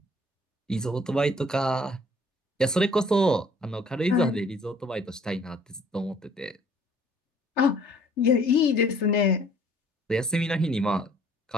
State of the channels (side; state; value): both; normal; correlation 0.58